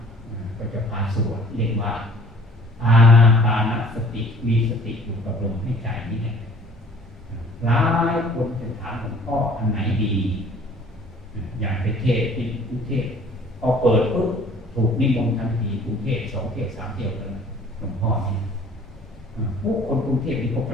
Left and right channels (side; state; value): both; normal; correlation 0.53